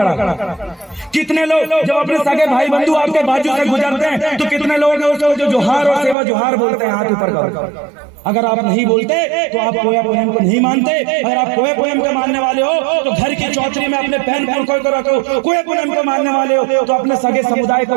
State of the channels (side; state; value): left; drops out; at 6.2 s